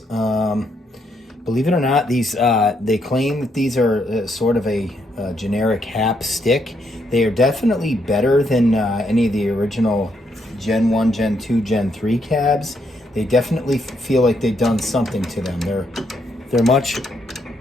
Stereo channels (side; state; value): both; normal; correlation 0.76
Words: it or not, these they claim that these are sort of a generic HAP stick. They are definitely better than any of the original Gen 1, Gen 2, Gen 3 cabs. They definitely feel like they've done something to them. They're much